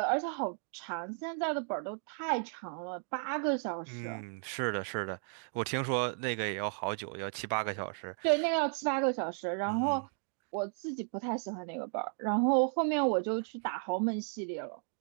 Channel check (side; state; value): left; silent; 55 dB below the other